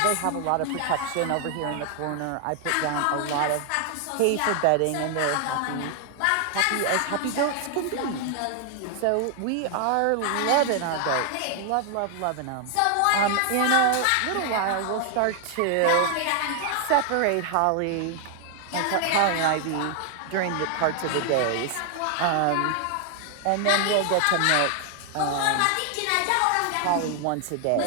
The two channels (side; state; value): both; different; correlation 0.00